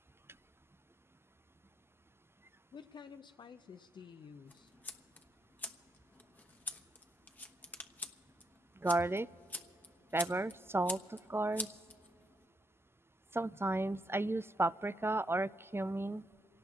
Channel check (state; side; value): normal; both; correlation 0.79